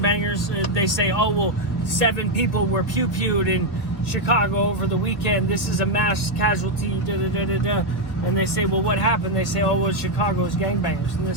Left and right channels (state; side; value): late; right; 1.6 ms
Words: They say, oh, well, 7 people were pew-pewed in Chicago over the weekend. This is a mass casualty, da-da-da-da-da. And they say, well, what happened? They say, oh, well, Chicago's gangbangers. And they